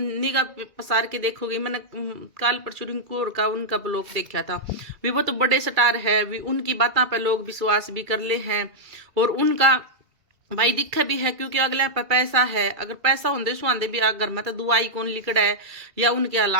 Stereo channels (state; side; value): late; left; 2.3 ms